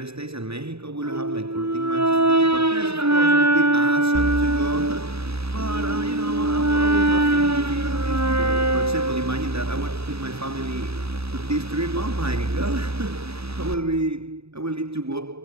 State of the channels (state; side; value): late; left; 0.78 ms